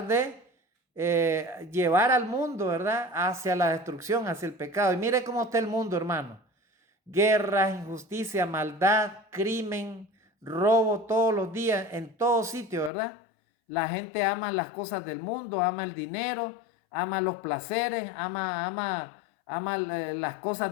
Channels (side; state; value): right; drops out; at 12.9 s